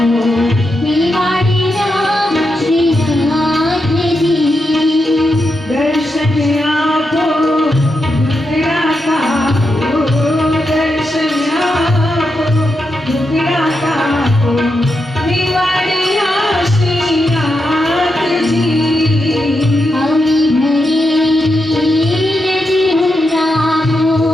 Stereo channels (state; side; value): normal; both; correlation 0.86